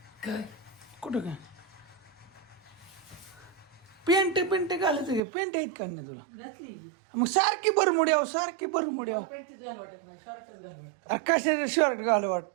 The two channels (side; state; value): left; drops out; at 5.2 s